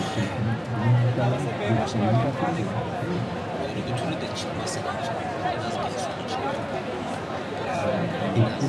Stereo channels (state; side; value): identical; both; correlation 1.00